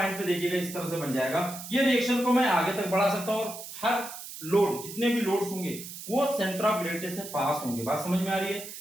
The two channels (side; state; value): right; noise; hiss, 11 dB below the sound